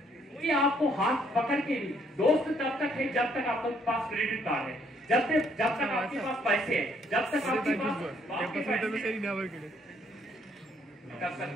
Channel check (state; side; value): normal; both; correlation 0.67